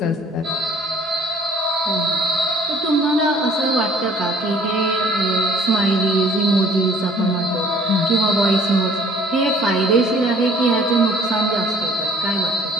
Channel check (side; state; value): both; normal; correlation 0.55